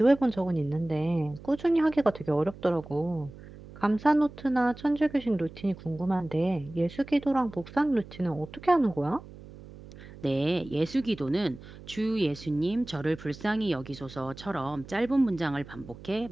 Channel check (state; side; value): noise; right; hum, 17 dB below the sound